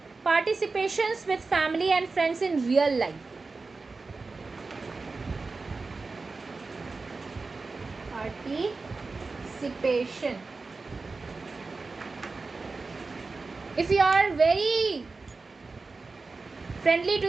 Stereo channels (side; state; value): left; quieter; 3.9 dB